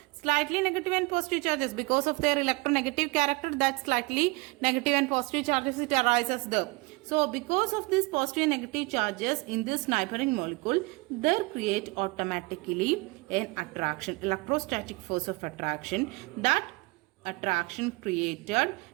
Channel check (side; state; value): left; quieter; 25.3 dB